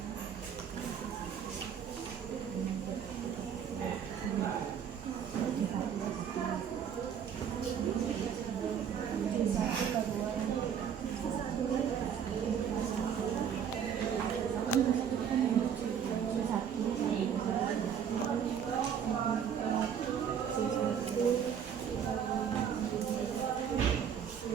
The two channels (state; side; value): quieter; left; 8.1 dB